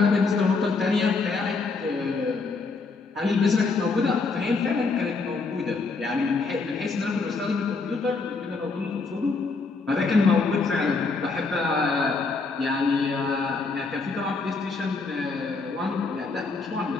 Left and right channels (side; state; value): right; quieter; 4.2 dB